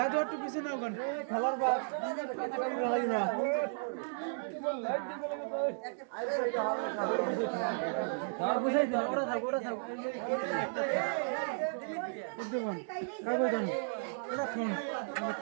একটু পিছে নাও গান খেলার বাপ না বুঝাই দাও ওরা থাক ডুবন কাগজ দাও ওরা ফোন আমার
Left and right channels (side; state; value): left; silent; digital silence